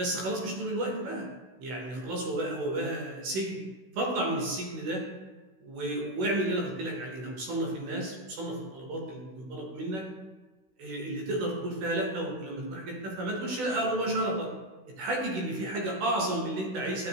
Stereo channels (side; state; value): left; late; 16 ms